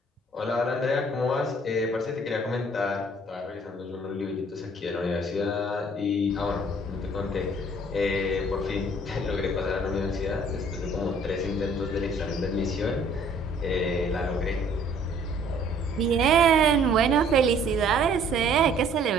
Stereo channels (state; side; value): normal; both; correlation 0.57